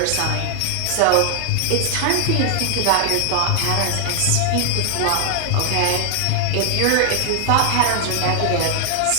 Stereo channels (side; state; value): both; different; correlation 0.00